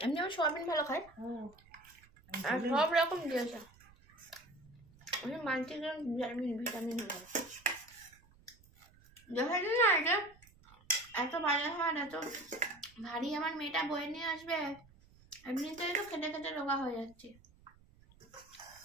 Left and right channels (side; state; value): right; noise; rumble, 26 dB below the sound